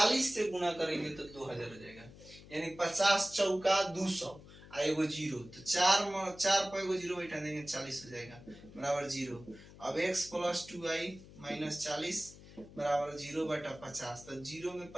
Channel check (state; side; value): noise; left; hum, 19 dB below the sound